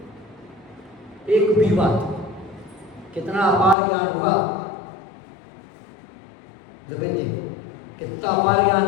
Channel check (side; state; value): right; drops out; at 3.8 s